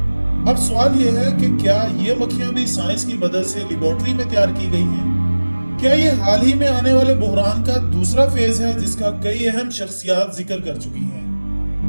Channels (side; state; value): both; inverted; correlation -1.00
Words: अब सवाल यह है कि क्या ये मक्खियां भी साइंस की मदद से लेबोरेटरी में तैयार की गई हैं? क्या ये हाल ही में आने वाले बुहरान का दूसरा फेज है जिसका कई अहम शख्सियात जिक्र कर चुकी हैं?